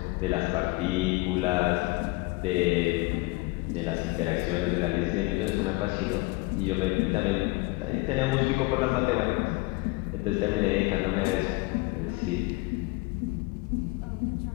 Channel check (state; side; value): quieter; right; 23.7 dB